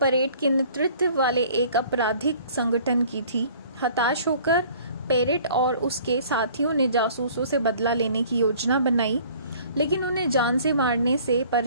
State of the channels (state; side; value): inverted; both; correlation -0.52